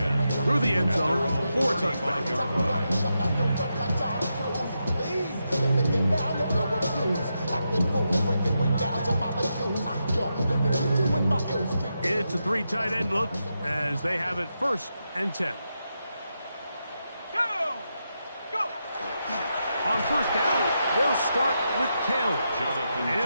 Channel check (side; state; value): both; inverted; correlation -0.85